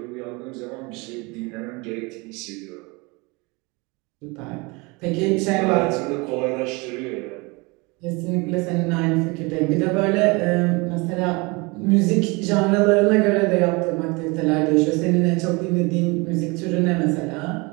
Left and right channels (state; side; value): quieter; left; 26.9 dB